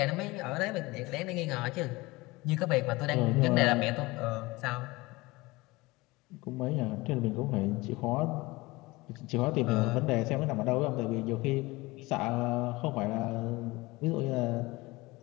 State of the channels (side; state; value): right; quieter; 21.8 dB